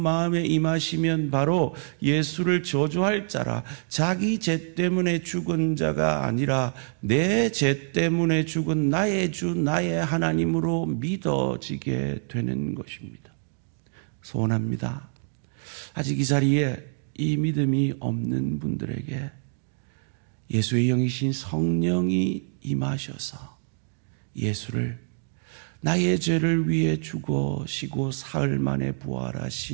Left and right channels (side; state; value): left; silent; 61 dB below the other